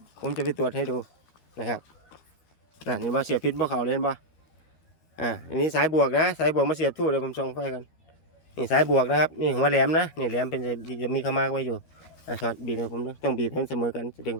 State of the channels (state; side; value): late; right; 13 ms